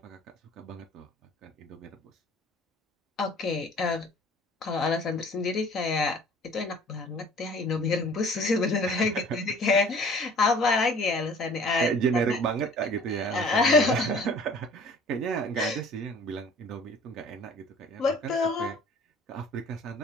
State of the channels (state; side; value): normal; both; correlation 0.50